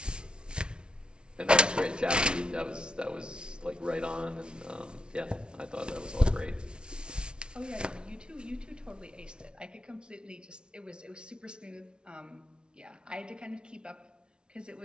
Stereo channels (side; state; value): left; late; 0.056 ms